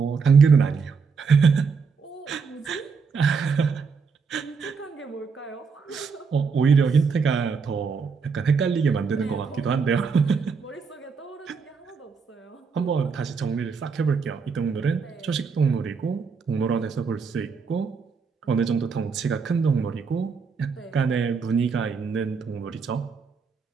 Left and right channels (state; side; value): quieter; left; 5.4 dB